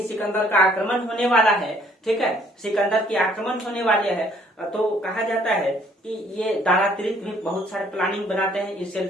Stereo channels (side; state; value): both; normal; correlation 0.61